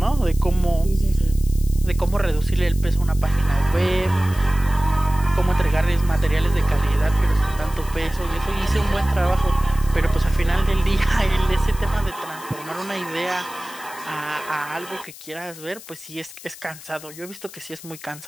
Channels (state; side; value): noise; left; hiss, 17 dB below the sound